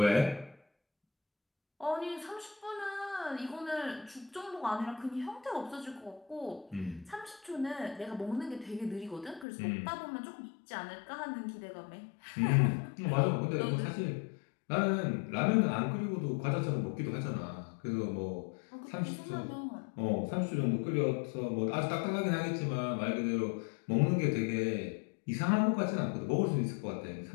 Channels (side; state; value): right; drops out; at 9.5 s